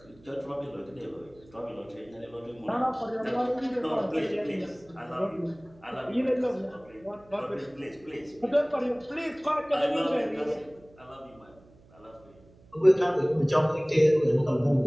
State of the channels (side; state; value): right; noise; hum, 26 dB below the sound